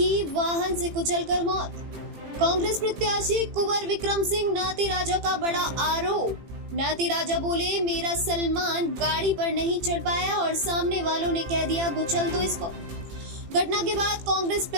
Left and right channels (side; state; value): left; late; 18 ms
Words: वाहन से कुचलकर मौत। कांग्रेस प्रत्याशी कुंवर विक्रम सिंह नाती राजा का बड़ा आरोप। नाती राजा बोले, मेरा सलमान गाड़ी पर नहीं चढ़ पाया और सामने वालों ने कह दिया कुचल दो इसको। घटना के बाद कांग्रेस